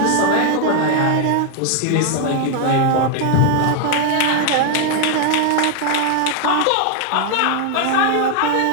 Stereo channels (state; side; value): different; both; correlation 0.00